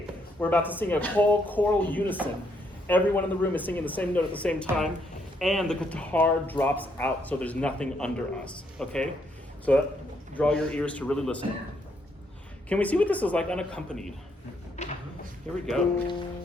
we're about to sing a whole choral unison. Everyone in the room is singing the same note at the same time, and the guitar drops out, so there's nothing under us. Okay? So draw your ears to really listen. Can we see what this is like unaccompanied? Here we go.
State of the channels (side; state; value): both; normal; correlation 0.74